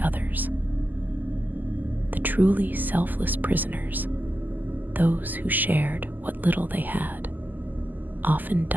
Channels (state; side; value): late; left; 0.086 ms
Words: others. The truly selfless prisoners, those who shared what little they had, often